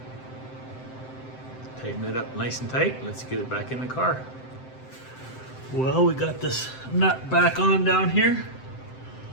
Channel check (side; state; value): right; late; 7.7 ms